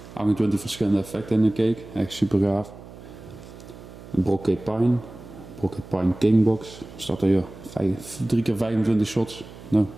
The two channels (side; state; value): right; noise; hum, 17 dB below the sound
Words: 28 verschillende effecten in de cake, echt super gaaf. Een Brocade Pine Kingbox, staat er hier 3x25 shots. Nou.